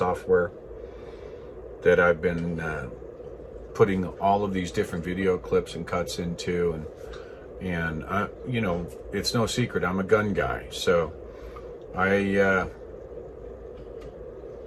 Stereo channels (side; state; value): both; identical; correlation 1.00